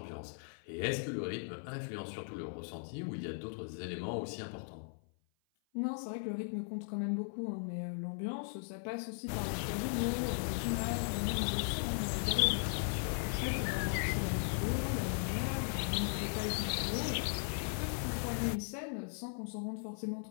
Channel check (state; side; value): silent; right; 53 dB below the other